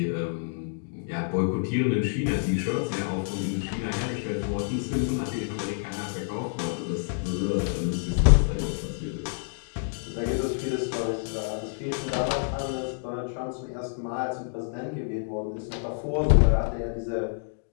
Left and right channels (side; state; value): right; silent; digital silence